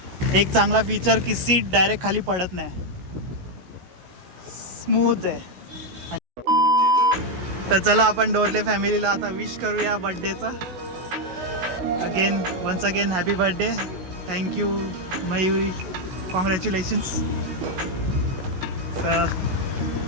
एक चांगला फीचर की सीट डायरेक्ट खाली पडत नाही, स्मूथ आहे. तर चला आपण डोरले फॅमिलीला आता विश करूया बड्डेचा. Once again happy birthday. Thank you Mayuri. Congratulations.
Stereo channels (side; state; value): left; late; 16 ms